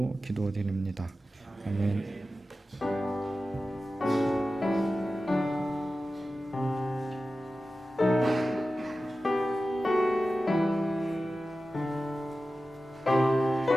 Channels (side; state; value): both; normal; correlation 0.94